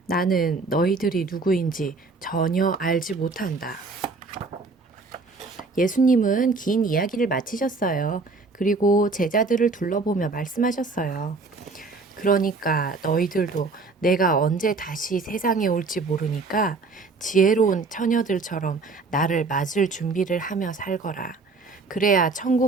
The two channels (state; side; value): quieter; left; 3.8 dB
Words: 나는 너희들이 누구인지 전혀 알지 못한다. 예수님은 긴 이야기를 마치셨어요. 그리고 제자들을 둘러보며 말씀하셨어요. 그러니까 너희들도 내가 언제 다시 세상에 올지 모르니까 지혜로운 처녀들처럼 나를 맞을 준비를 하며 살거라. 그래야